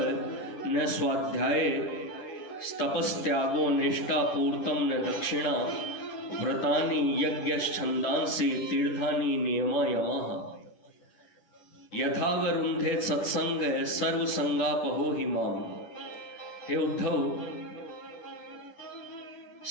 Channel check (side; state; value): right; late; 10 ms